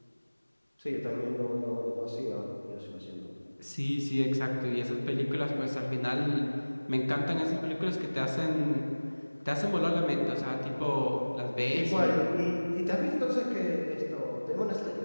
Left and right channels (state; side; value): inverted; both; correlation -1.00